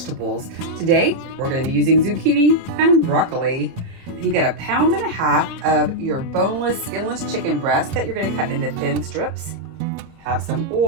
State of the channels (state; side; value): late; left; 30 ms